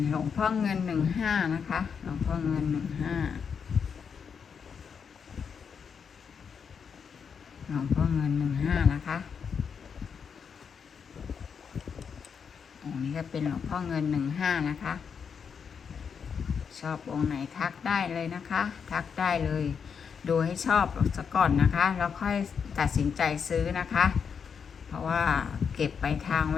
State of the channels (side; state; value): right; quieter; 6.6 dB